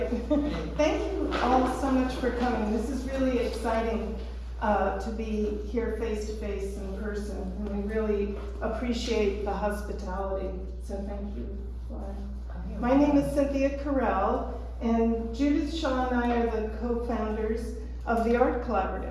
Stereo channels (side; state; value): both; identical; correlation 1.00